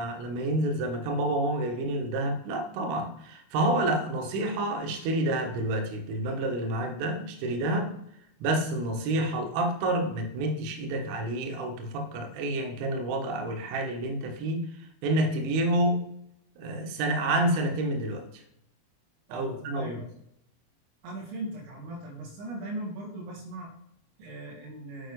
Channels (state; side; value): late; left; 25 ms